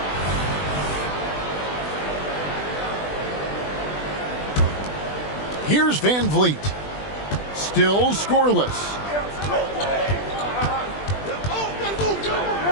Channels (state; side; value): late; right; 20 ms